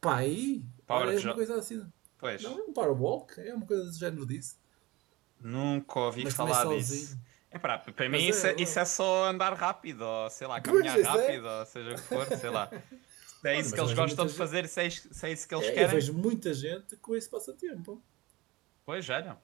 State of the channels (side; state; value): left; quieter; 21.1 dB